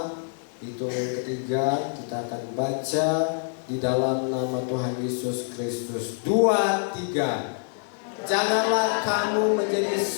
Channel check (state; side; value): silent; right; 61 dB below the other